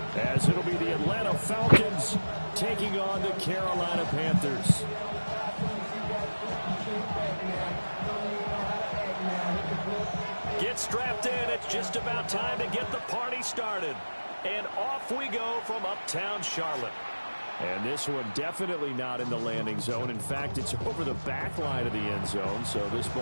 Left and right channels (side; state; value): both; inverted; correlation -1.00